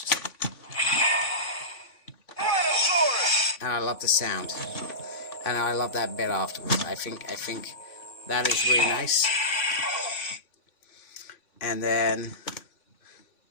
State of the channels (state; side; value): late; right; 3.5 ms